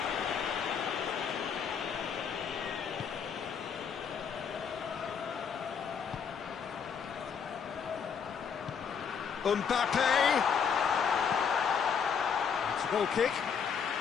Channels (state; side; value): quieter; right; 6.8 dB